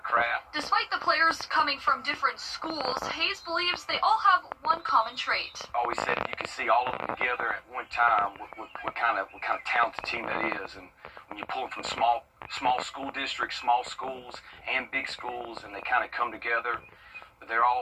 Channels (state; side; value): identical; both; correlation 1.00